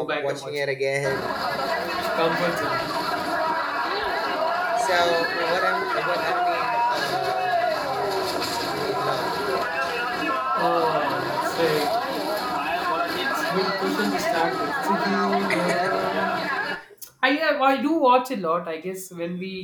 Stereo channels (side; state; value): both; identical; correlation 1.00